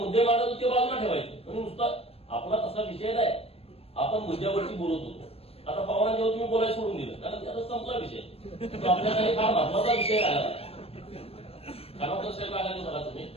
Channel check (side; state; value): right; late; 0.28 ms